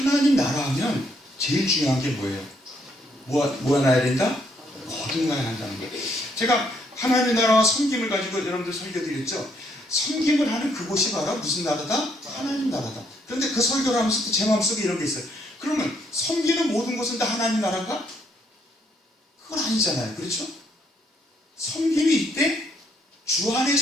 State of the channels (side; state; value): both; normal; correlation 0.71